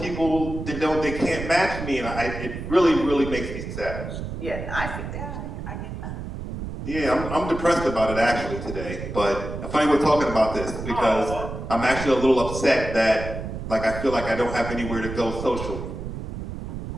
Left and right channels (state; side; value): noise; right; rumble, 7 dB below the sound